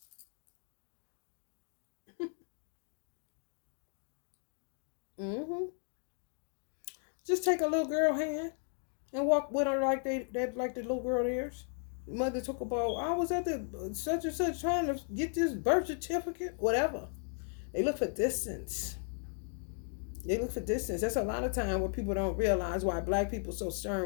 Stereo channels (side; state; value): right; silent; 54 dB below the other